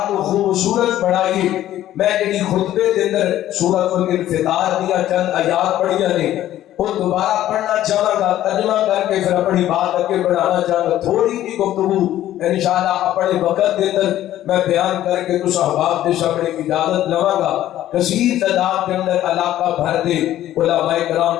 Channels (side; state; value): right; quieter; 13.1 dB